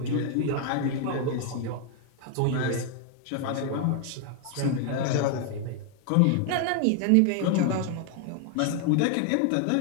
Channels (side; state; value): both; different; correlation 0.00